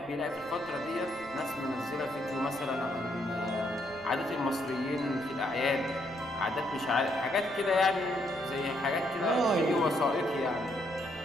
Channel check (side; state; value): right; noise; rumble, 23 dB below the sound